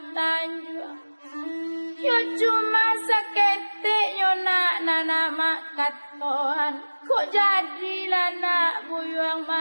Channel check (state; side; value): inverted; both; correlation -1.00